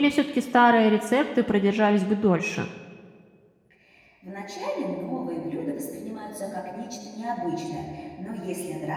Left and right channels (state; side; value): identical; both; correlation 1.00